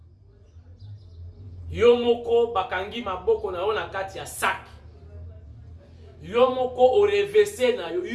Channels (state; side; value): identical; both; correlation 1.00